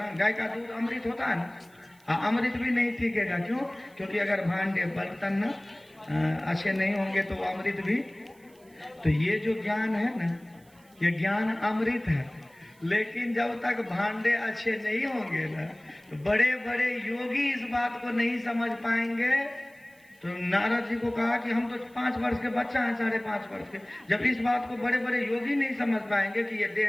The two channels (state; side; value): noise; right; hiss, 30 dB below the sound